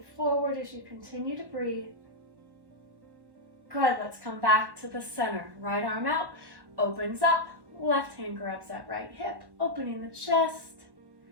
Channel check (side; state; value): left; late; 1.1 ms